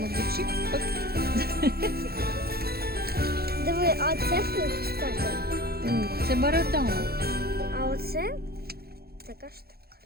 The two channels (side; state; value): left; late; 0.45 ms